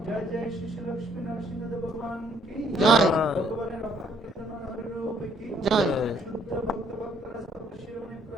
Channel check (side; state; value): both; normal; correlation 0.65